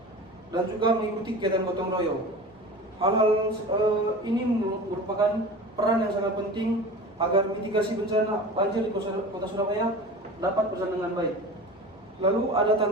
dan juga mengikuti kegiatan gotong royong. Hal-hal ini merupakan peran yang sangat penting agar mitigasi bencana banjir di Kota Surabaya dapat berjalan dengan baik. Lalu ada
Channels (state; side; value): normal; both; correlation 0.35